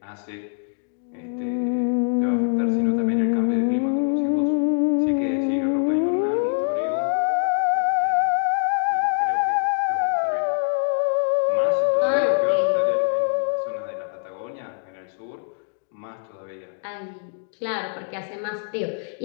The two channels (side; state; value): right; silent; digital silence